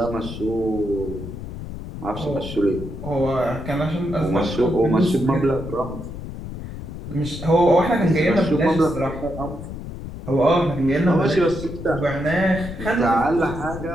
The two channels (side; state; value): left; noise; rumble, 10 dB below the sound